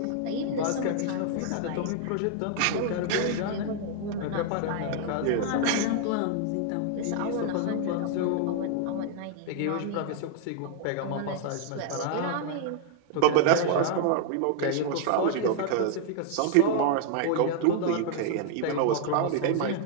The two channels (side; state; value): both; different; correlation 0.00